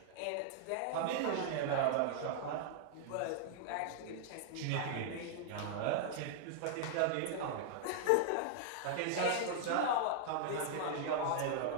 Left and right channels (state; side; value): different; both; correlation -0.01